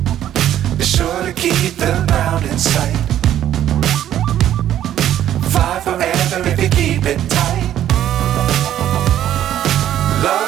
Be sure to keep the ground in sight. Fly forever if you keep it tight.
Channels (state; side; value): quieter; left; 11.5 dB